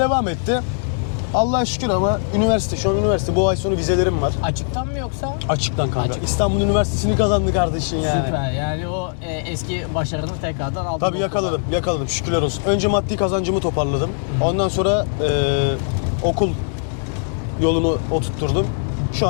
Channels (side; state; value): right; silent; digital silence